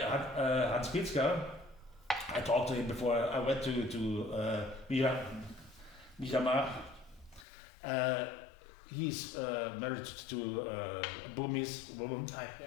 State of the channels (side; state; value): right; drops out; at 7.5 s